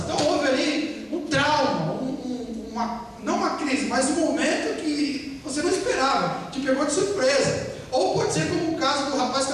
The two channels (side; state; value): both; identical; correlation 1.00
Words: Então houve ali um trauma, não uma crise, mas um momento que você não esperava, te pegou de surpresa. Ou pode ser como o caso do rapaz que